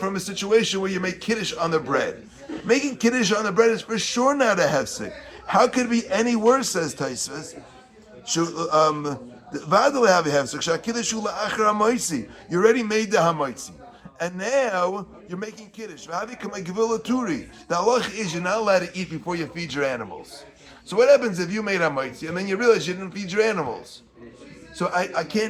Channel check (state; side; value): identical; both; correlation 1.00